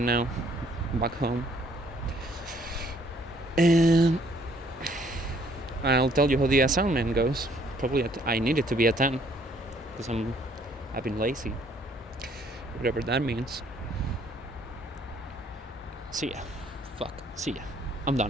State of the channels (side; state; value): both; normal; correlation 0.63